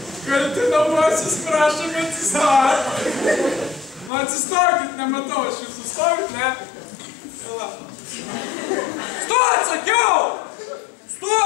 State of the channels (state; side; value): drops out; right; at 4.1 s